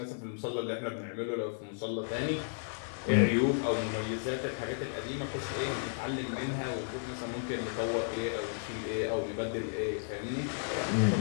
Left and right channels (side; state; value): right; silent; 55 dB below the other